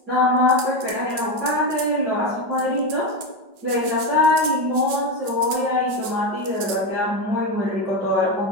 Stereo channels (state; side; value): late; left; 5.2 ms